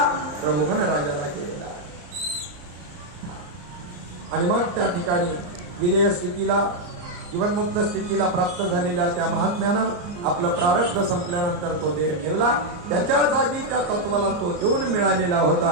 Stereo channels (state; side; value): late; left; 34 ms